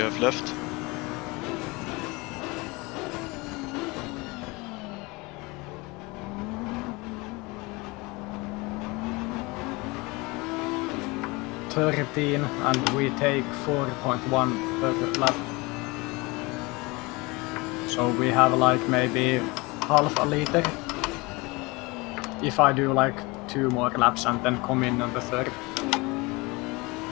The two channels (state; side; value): quieter; right; 24.8 dB